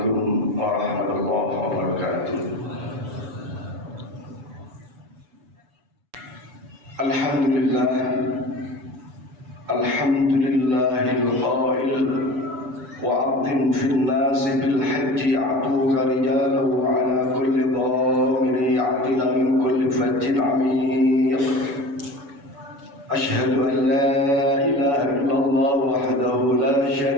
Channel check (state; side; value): late; left; 7.0 ms